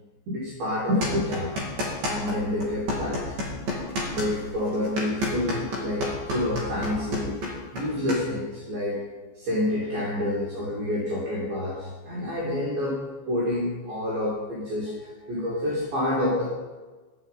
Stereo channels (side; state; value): left; late; 14 ms